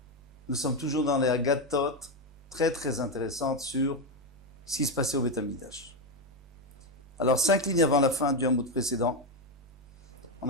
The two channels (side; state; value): both; normal; correlation 0.08